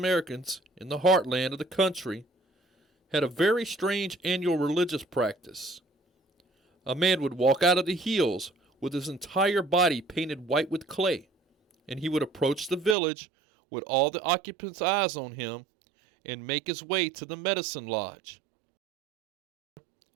in the heartland of the country had a very strange annual religious practice. A man would walk out of the hills with his entire body painted white with clay, and he would approach the village with all the occupants' eyes on him and make his way to the medicine lodge.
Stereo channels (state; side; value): drops out; left; at 13.0 s